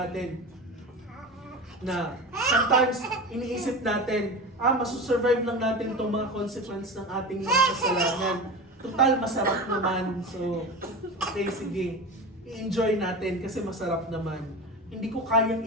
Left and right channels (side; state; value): both; normal; correlation 0.28